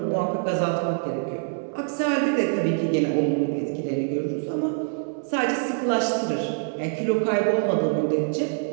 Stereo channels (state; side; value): silent; left; 61 dB below the other